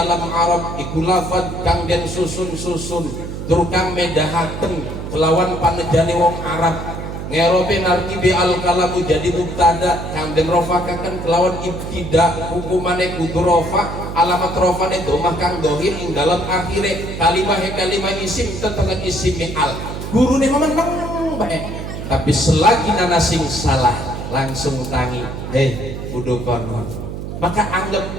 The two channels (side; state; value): right; noise; hum, 7 dB below the sound